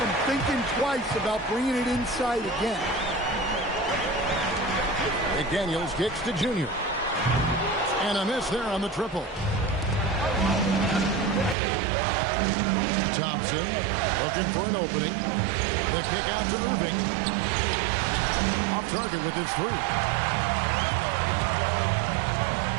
thinking twice about bringing it inside again. McDaniels kicks to Junior. And a miss there on the triple. Thompson looking for an opening. The kick out to Irving. Off target with his three.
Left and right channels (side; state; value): left; drops out; at 11.6 s